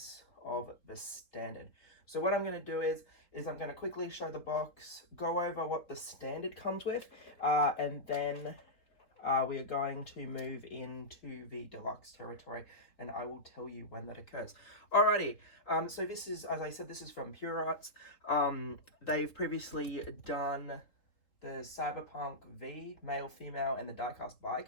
of the standard. So what I'm going to do is I'm going to quickly show the box, go over what the standard comes with, and then we are going to move into the deluxe territory, and I will tell you when that occurs. Alrighty, so this is, as I said, this is from Pure Arts. They've previously done the Cyberpunk V, male, female, and the diecast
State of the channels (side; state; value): right; late; 3.7 ms